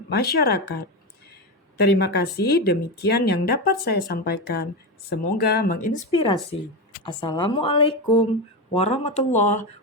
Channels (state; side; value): normal; both; correlation 0.15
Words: masyarakat. Terima kasih, demikian yang dapat saya sampaikan. Semoga menginspirasi. Assalamualaikum warahmatullahi